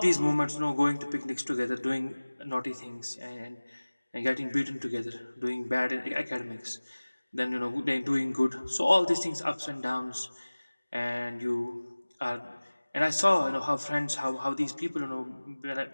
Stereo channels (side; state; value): both; inverted; correlation -1.00